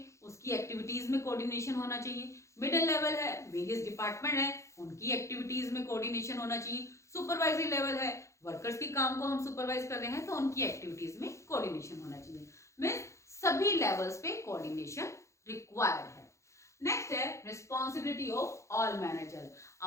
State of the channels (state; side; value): late; right; 0.14 ms